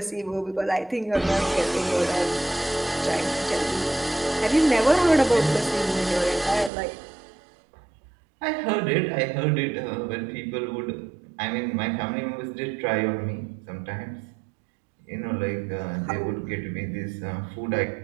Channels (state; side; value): drops out; left; at 6.7 s